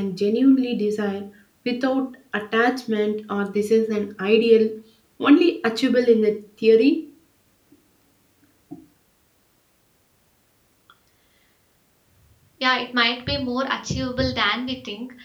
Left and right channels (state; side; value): identical; both; correlation 1.00